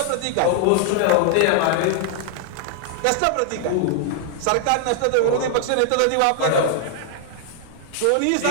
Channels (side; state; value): both; different; correlation 0.00